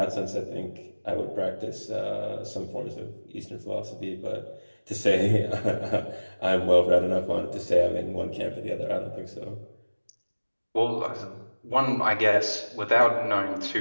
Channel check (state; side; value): inverted; both; correlation -1.00